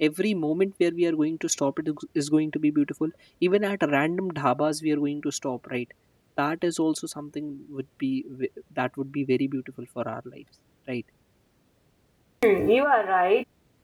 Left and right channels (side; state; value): both; identical; correlation 1.00